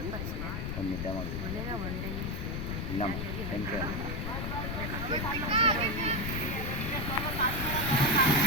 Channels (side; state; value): left; noise; rumble, 3 dB below the sound